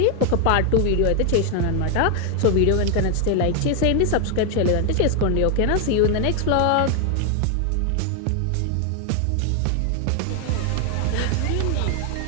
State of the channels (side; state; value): both; different; correlation 0.00